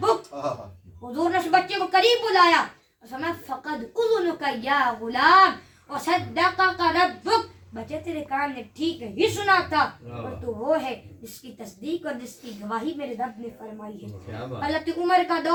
حضور نے اس بچے کو قریب بلایا اور فرمایا فقد اذنک یا غلام وصدقک ربک، بچے تیرے کان نے ٹھیک ہی سنا تھا، اور تو وہ ہے جس کی تصدیق اور جس کی گواہی میرے رب نے فرمائی ہے۔ حضرت عمر کا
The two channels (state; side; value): identical; both; correlation 1.00